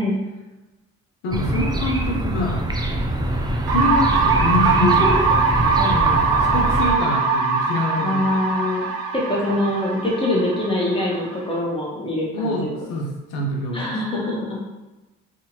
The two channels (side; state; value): both; normal; correlation 0.29